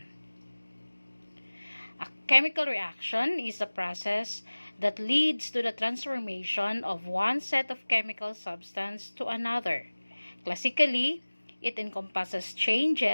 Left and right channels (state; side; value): inverted; both; correlation -1.00